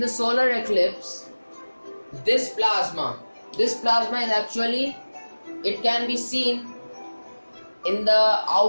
solar eclipse, this plasma is actually, it can be seen in the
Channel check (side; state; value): both; inverted; correlation -1.00